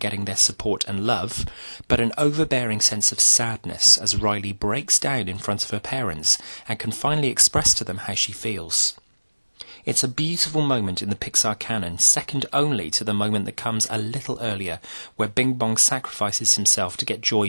getting their support and love, but an overbearing sense of sadness as Riley breaks down in front of her parents and can finally express to them how she feels. It's a beautiful moment in the Pixar canon, second only to the moment that comes a little earlier, where Bing Bong sacrifices himself to get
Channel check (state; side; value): inverted; both; correlation -1.00